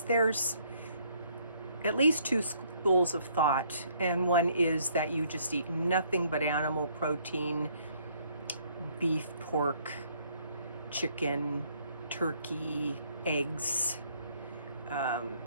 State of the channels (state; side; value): inverted; both; correlation -0.65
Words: there's at least two schools of thought, and one is that you just eat nothing but animal protein, beef, pork, chicken, turkey, eggs,